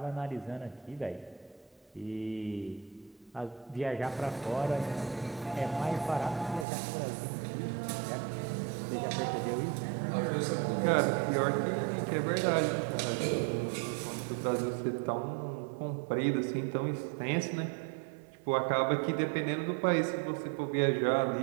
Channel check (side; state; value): left; drops out; at 6.7 s